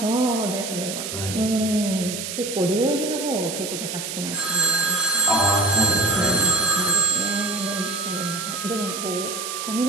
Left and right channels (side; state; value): right; noise; hiss, 6 dB below the sound